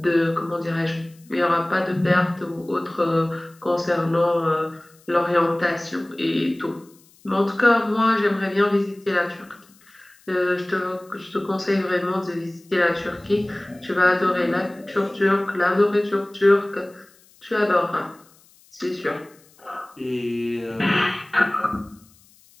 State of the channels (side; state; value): left; noise; hiss, 29 dB below the sound